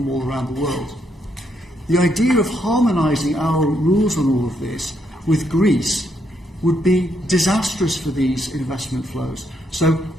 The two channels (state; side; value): normal; both; correlation 0.76